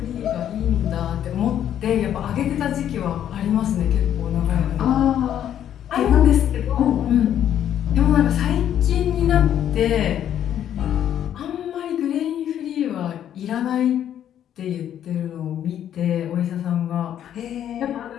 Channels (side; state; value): right; quieter; 10.3 dB